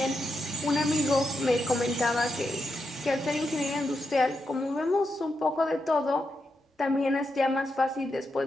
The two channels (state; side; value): normal; both; correlation 0.85